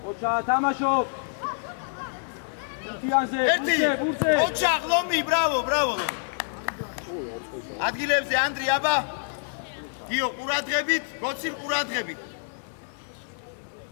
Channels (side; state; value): right; silent; 60 dB below the other